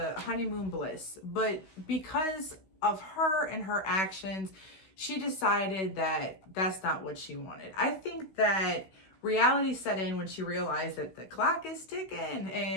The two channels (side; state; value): right; late; 16 ms